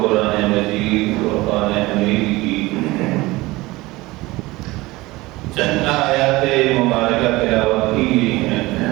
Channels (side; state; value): left; quieter; 20.4 dB